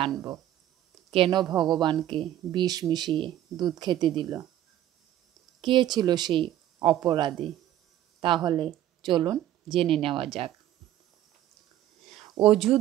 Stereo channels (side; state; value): left; quieter; 12.6 dB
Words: কেন ভগবানকে বিষ মিশিয়ে দুধ খেতে দিল? কে ছিল সেই অপরাধী? তাহলে চলুন জেনে নেওয়া যাক।